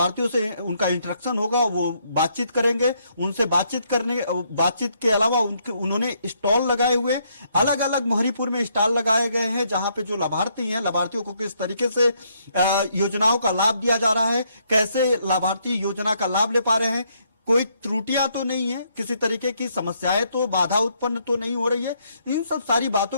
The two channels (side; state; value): both; inverted; correlation -0.72